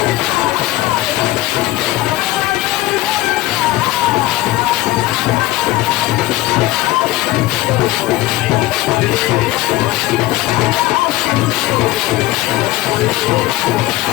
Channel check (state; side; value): quieter; right; 17.0 dB